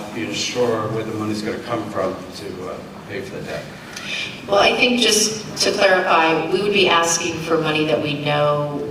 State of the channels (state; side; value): identical; both; correlation 1.00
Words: being sure where the money's going to come from to pay for the debt. Well, I think just to clarify, we would be asking for money that we know